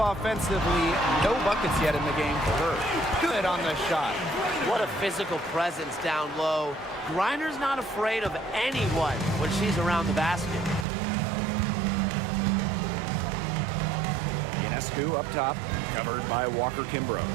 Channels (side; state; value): left; drops out; at 10.9 s